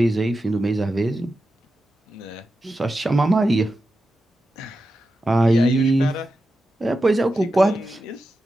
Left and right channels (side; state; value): both; normal; correlation 0.91